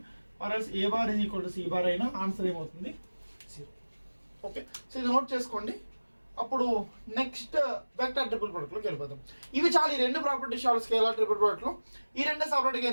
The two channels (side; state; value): both; inverted; correlation -1.00